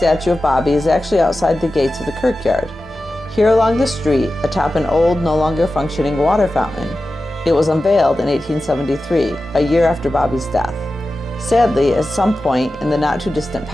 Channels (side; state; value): both; normal; correlation 0.94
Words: of Bobby is actually outside the gates of the Kirkyard. Here along the street, atop an old, no longer functioning water fountain, it was unveiled in 1873, a year after Bobby's death. Sadly, at some point in the not-too-distant